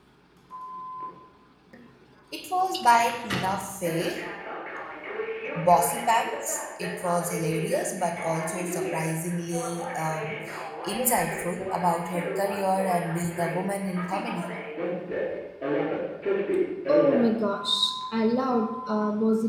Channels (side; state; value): both; identical; correlation 1.00